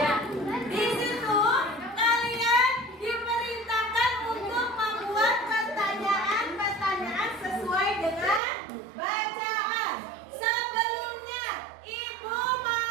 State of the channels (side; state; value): left; drops out; at 8.4 s